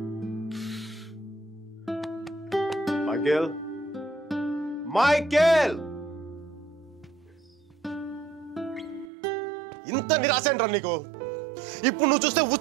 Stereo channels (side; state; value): left; drops out; at 9.1 s